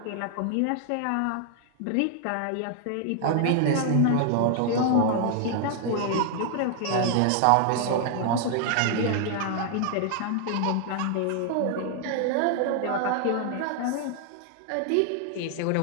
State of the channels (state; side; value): different; both; correlation 0.00